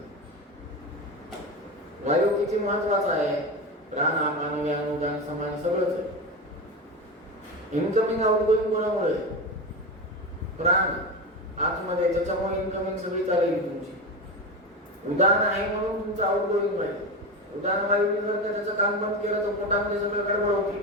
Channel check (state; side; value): normal; both; correlation 0.20